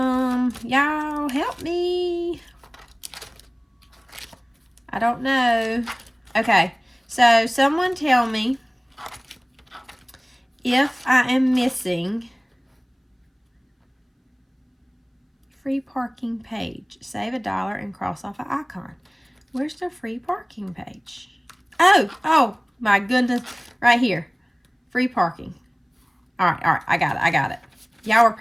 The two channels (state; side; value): identical; both; correlation 1.00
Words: Y'all help me. I don't know. Okay, so someone tell me if I am missing free parking page. Save $1 and cross off an icon. Where's the free parking page? Oh my goodness, right here. Free parking. All right, I got it. Y'all were